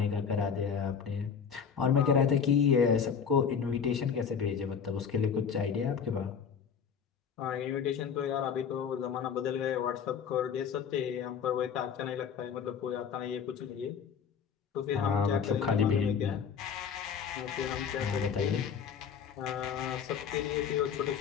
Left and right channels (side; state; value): right; quieter; 7.0 dB